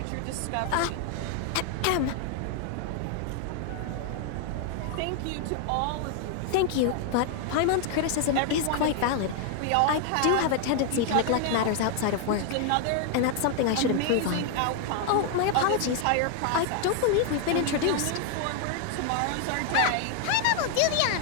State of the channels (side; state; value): both; different; correlation 0.00